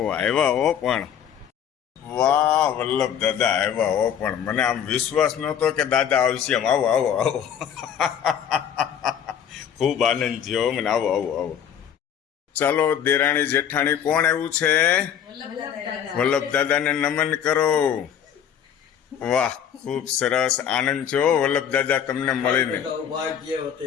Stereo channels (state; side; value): quieter; right; 8.8 dB